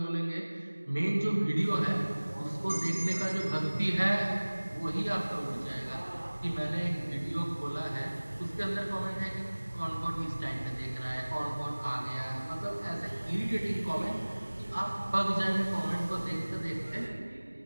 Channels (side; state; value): both; inverted; correlation -1.00